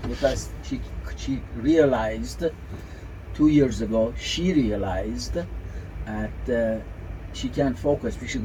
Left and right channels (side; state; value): both; identical; correlation 1.00